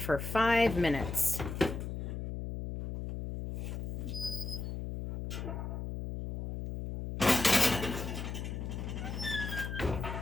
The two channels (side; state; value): left; noise; hum, 5 dB below the sound